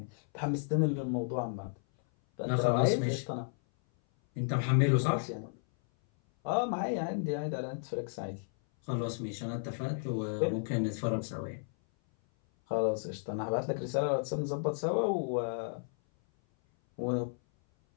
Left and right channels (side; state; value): right; silent; 56 dB below the other